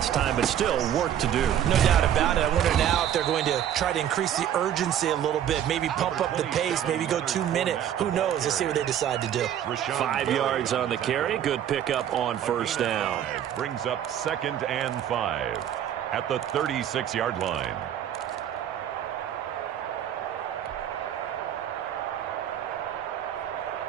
time, but still work to do. No doubt about it. I wonder now if they're going to try to increase the urgency a little bit, maybe pump up the pace, maybe go 2-minute. Who knows? Let's see what they decide to do. 5 yards on the carry. Good pickup on 1st down. Brings up 2nd and 5 at the 36-yard line.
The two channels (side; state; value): left; quieter; 10.2 dB